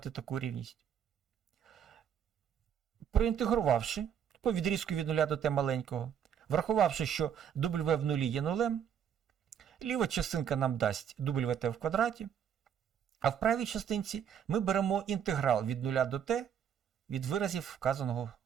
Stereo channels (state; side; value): quieter; left; 8.6 dB